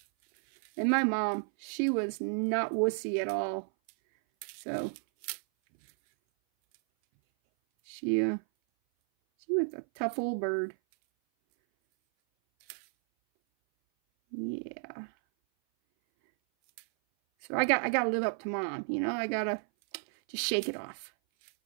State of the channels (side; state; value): left; silent; 56 dB below the other